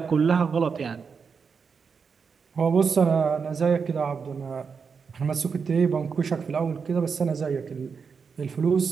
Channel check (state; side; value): quieter; left; 5.8 dB